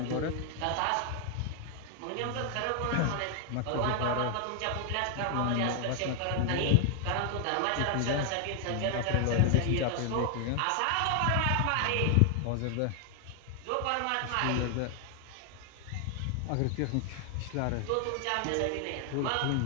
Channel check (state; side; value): different; both; correlation 0.00